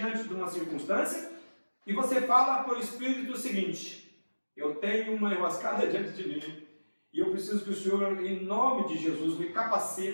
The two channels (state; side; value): inverted; both; correlation -1.00